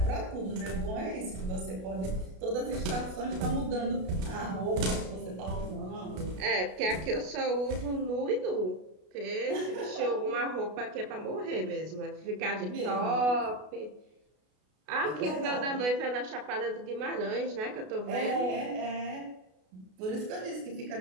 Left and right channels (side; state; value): left; late; 33 ms